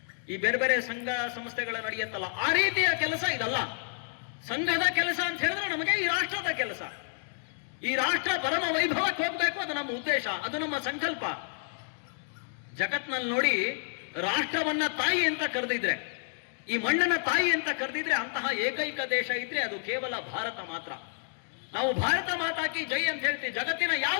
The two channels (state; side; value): silent; right; digital silence